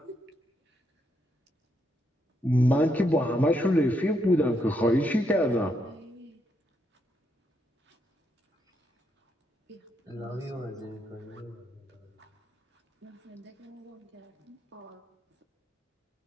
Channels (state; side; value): normal; both; correlation 0.78